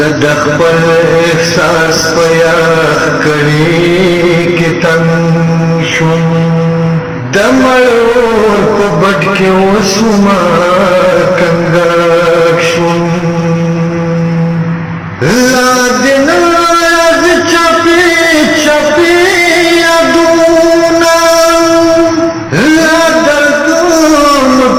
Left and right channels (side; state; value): both; identical; correlation 1.00